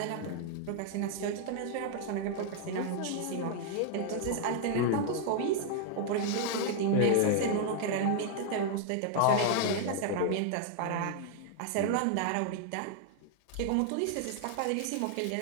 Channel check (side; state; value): both; different; correlation 0.00